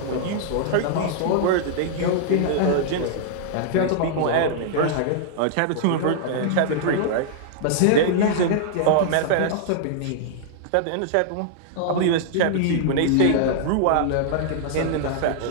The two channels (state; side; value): different; both; correlation -0.01